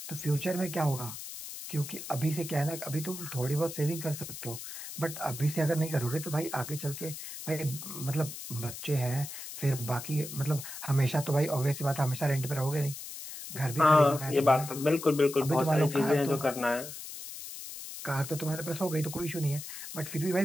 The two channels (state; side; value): noise; left; hiss, 10 dB below the sound